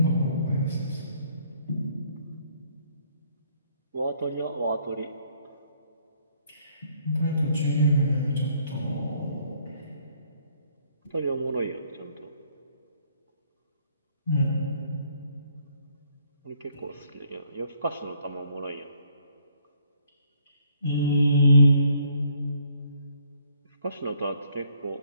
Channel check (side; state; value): both; inverted; correlation -0.65